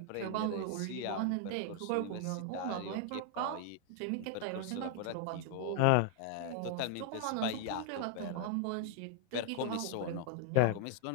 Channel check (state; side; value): different; both; correlation 0.00